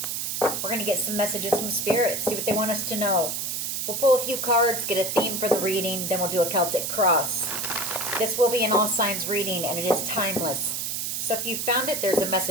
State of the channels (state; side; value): noise; right; hiss, 2 dB below the sound